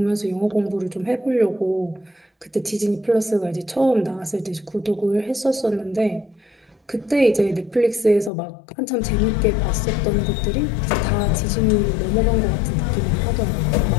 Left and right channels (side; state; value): right; drops out; at 8.3 s